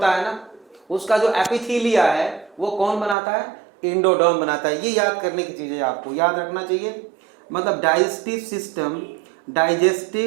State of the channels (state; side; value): drops out; left; at 3.2 s